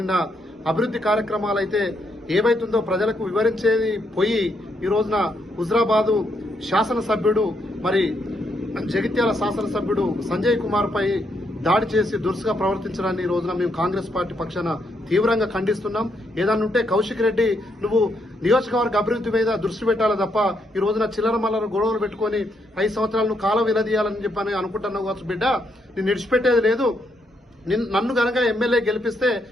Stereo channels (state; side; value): normal; both; correlation 0.77